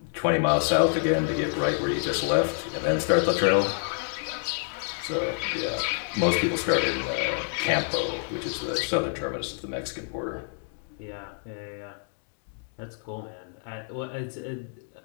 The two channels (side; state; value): right; silent; 60 dB below the other